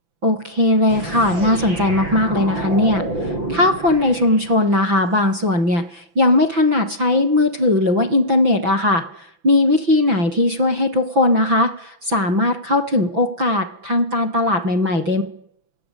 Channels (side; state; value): left; late; 6.0 ms